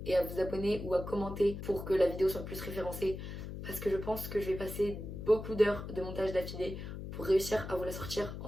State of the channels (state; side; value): noise; left; hum, 8 dB below the sound